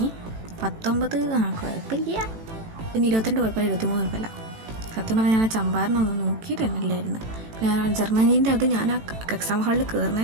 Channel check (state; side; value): late; left; 18 ms